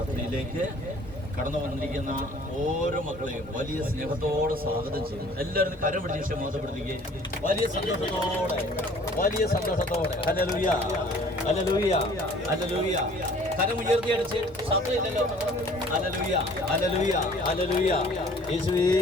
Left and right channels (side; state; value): both; normal; correlation 0.52